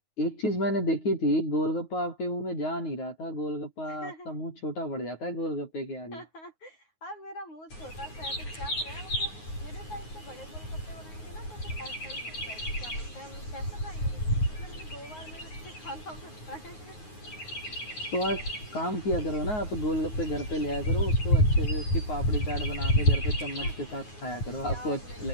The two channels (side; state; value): right; late; 9.5 ms